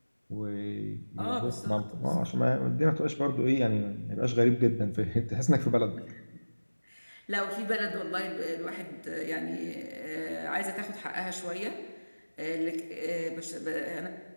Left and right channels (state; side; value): inverted; both; correlation -1.00